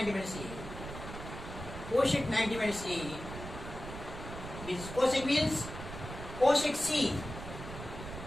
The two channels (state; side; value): noise; right; rumble, 10 dB below the sound